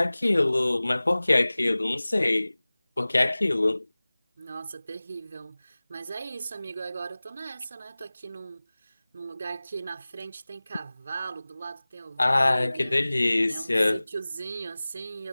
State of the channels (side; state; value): both; inverted; correlation -0.99